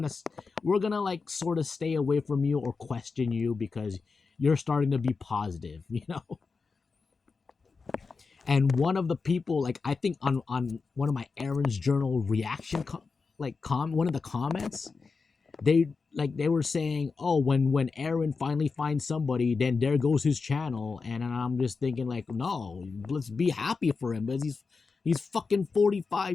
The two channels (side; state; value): right; quieter; 4.6 dB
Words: gonna like sort of stay away from you or question you because you're starting to be positive, you know. And one of the people, like I think on one of my Aaron's Journal reaction, one of the comments, they were saying, oh, when Aaron finally finds somebody, then there goes his channel. And I'm just thinking like, no, let's be happy for him because he's fucking